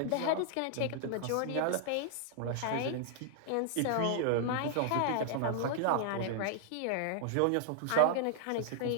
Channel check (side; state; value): both; different; correlation 0.00